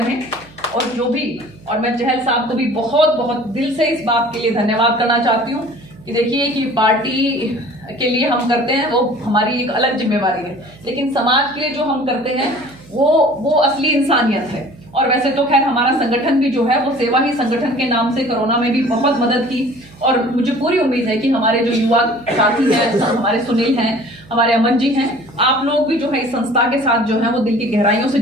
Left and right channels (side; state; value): right; noise; hum, 23 dB below the sound